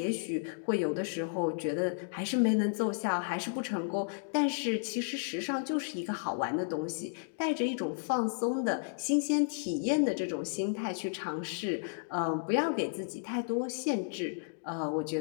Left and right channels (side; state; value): right; silent; digital silence